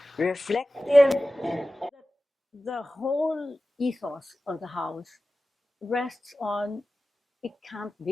reflective. The whole ethos of the house rests on it can't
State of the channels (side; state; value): both; normal; correlation 0.95